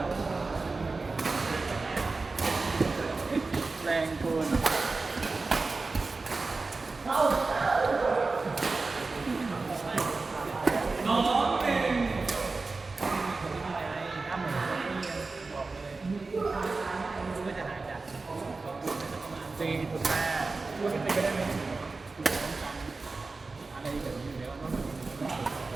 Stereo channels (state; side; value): quieter; left; 3.8 dB